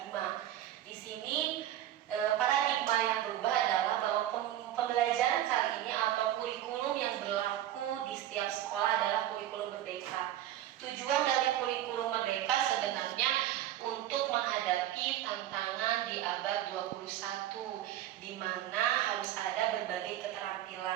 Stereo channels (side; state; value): left; quieter; 12.6 dB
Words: Di sini paradigma yang berubah adalah bahwa pembelajaran kali ini atau kurikulum yang berlaku di setiap sekolah adalah kurikulum merdeka. Tujuan dari kurikulum merdeka sebenarnya untuk menghadapi tantangan di abad 21 di mana harus ada berbagai